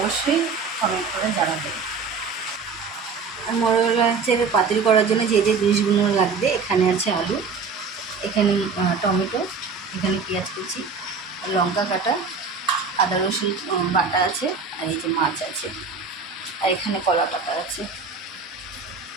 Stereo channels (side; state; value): left; quieter; 5.0 dB